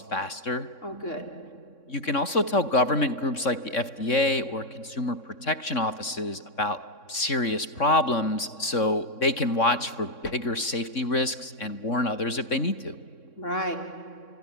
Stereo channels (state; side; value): late; right; 3.6 ms